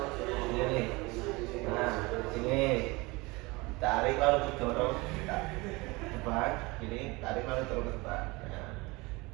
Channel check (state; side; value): quieter; left; 24.2 dB